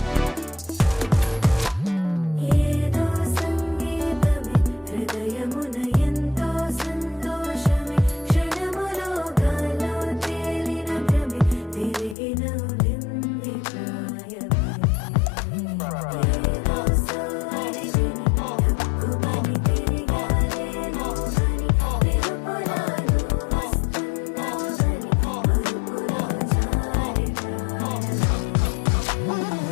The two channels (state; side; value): drops out; right; at 12.2 s